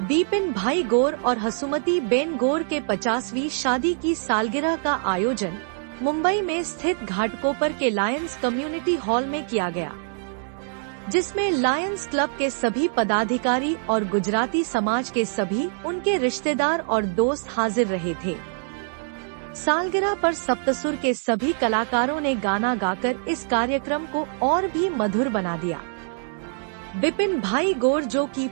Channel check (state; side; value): silent; left; 62 dB below the other